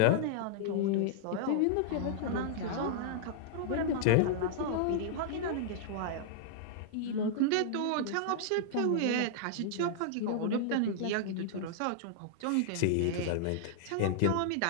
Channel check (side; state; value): both; different; correlation -0.01